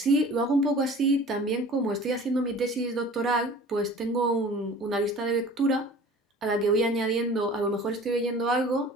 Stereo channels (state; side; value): normal; both; correlation 0.44